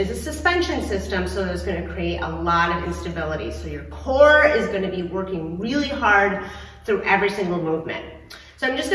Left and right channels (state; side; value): identical; both; correlation 1.00